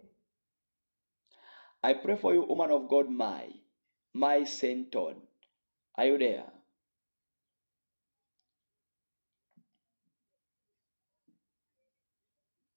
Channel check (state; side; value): inverted; both; correlation -1.00